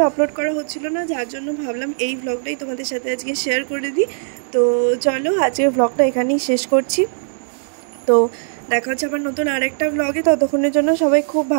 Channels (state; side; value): silent; left; 66 dB below the other